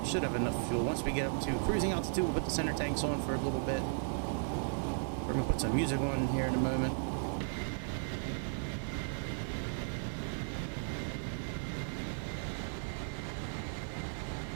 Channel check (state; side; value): silent; left; digital silence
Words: should have enough fuel. Once we get up to cruising altitude, we'll put the center tanks on for a little bit. We're gonna put some music on here in a moment.